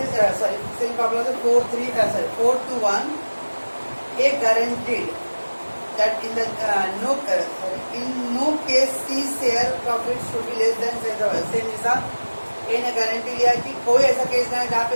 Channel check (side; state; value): both; inverted; correlation -1.00